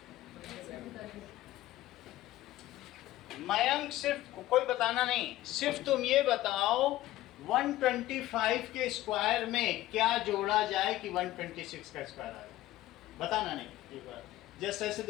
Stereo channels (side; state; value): right; quieter; 15.5 dB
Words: मयंक, सिर्फ कोई बताना नहीं, सिर्फ तुम ये बताओ 125 के स्क्वायर में क्या जोड़ा जाए कि 126 का स्क्वायर आए। बताना नहीं, एक बार जस्ट ऐसे